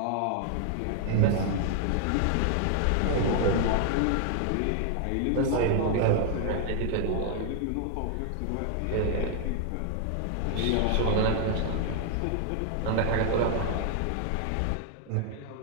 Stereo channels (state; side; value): different; both; correlation 0.00